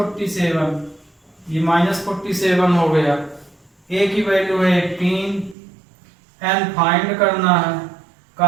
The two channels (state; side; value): drops out; left; at 5.6 s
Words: ये -47 हो गया। ए की वैल्यू है 18, एन फाइंड करना है।